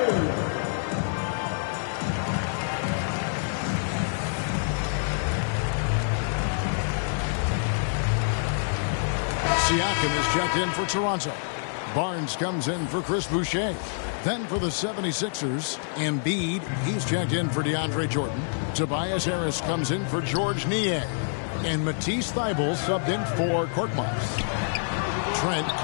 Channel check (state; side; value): silent; right; digital silence